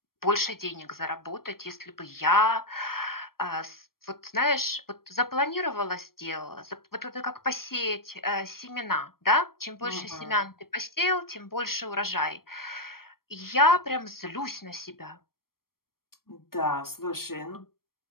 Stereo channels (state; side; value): late; right; 0.93 ms